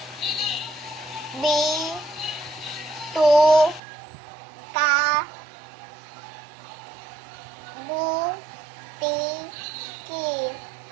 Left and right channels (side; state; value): left; drops out; at 3.8 s